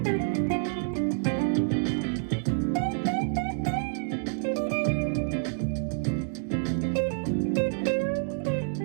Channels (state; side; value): silent; left; digital silence